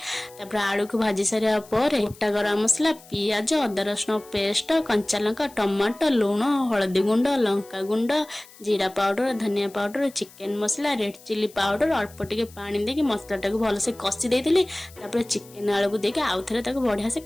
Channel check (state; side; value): noise; left; hiss, 23 dB below the sound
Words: आलू को भाजी सारा गोटा गरम मसला पियाज अदा रसुण पेस्ट कंचा लंका टमाटो लुण हलदी गुंड लंका गुंड जीरा पाउडर धनिया पाउडर चिकेन मसला रेड चिली पाउडर अल्प टिके पानी देके मसला टाक भलसे कषि देती चिकेन आलू को देके आउ थे बढ़िया से